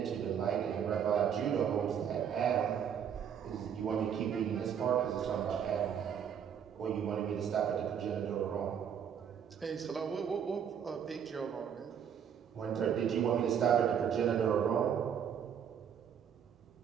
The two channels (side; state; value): left; quieter; 8.2 dB